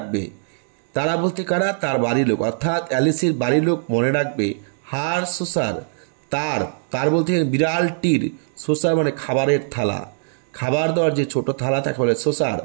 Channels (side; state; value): left; silent; digital silence